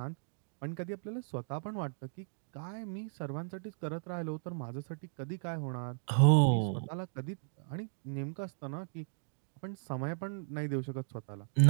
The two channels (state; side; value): silent; left; digital silence